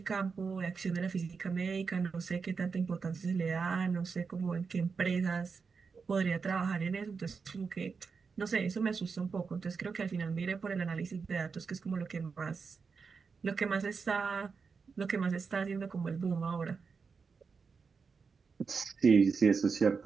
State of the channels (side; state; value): left; quieter; 5.2 dB